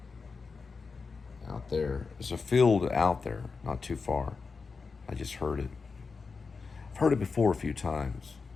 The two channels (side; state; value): right; quieter; 4.7 dB